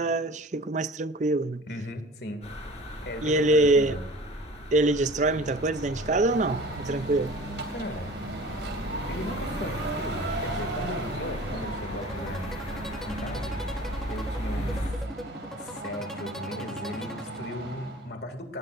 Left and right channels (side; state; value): both; normal; correlation 0.43